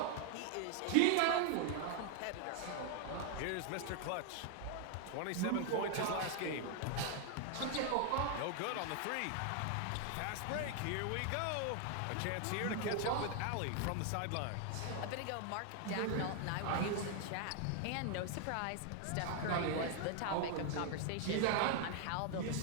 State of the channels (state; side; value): different; both; correlation 0.00